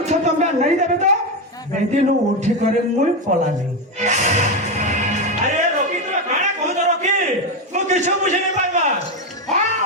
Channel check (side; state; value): both; normal; correlation 0.11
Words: तो तुम नहीं देबे तो बेटी नु उठी करे मुई पला नहीं अरे रवि तुम्हें गाना कहू तो रवि वो किछु बुझे नहीं पाइबा